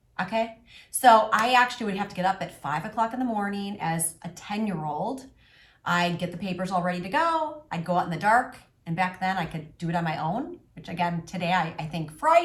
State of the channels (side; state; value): both; identical; correlation 1.00